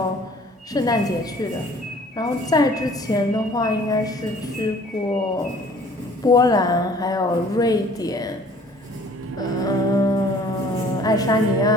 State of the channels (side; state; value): both; normal; correlation 0.52